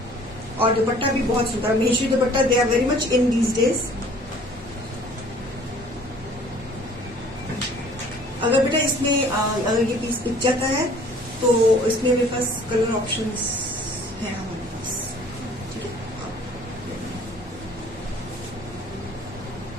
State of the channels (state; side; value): normal; both; correlation 0.53